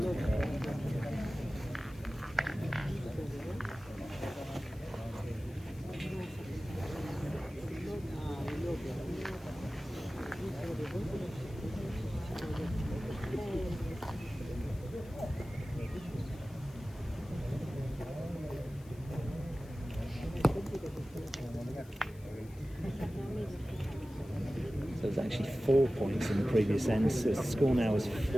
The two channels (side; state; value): left; noise; hiss, 25 dB below the sound